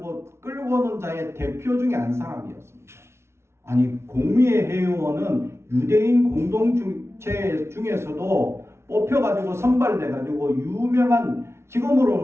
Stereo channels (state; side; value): late; left; 0.13 ms